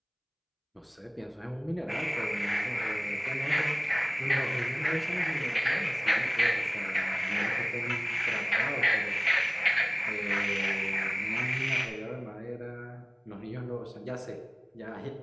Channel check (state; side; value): identical; both; correlation 1.00